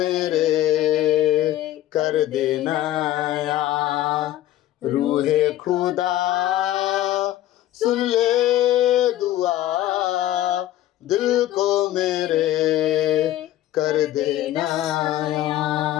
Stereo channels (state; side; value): quieter; right; 13.7 dB